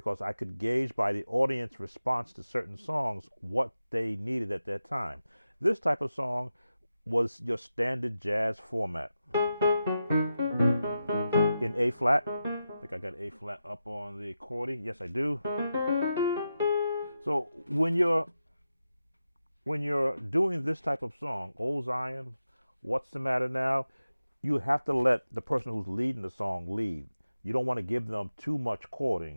I could gauge by the audience response to certain songs what they needed at that time. This type of song was your standard jazz format in A flat. I think I got A flat up on the accordion. Yes, I do. So when you're doing this type of song, Old Zion, What's the Matter Now, you have to let the person who's leading the song lead. You don't want to give them too much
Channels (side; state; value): both; inverted; correlation -0.90